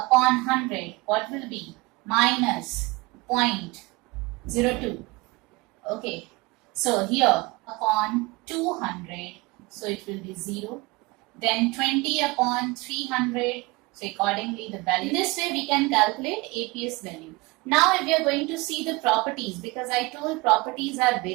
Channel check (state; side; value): quieter; left; 23.9 dB